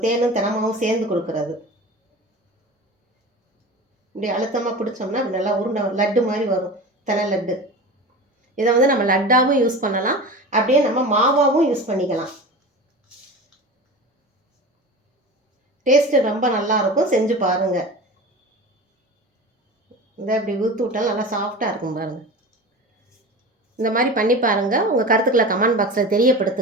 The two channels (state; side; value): normal; both; correlation 0.32